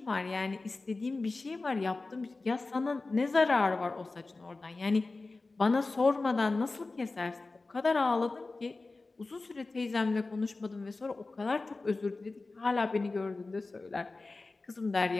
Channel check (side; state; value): right; quieter; 3.5 dB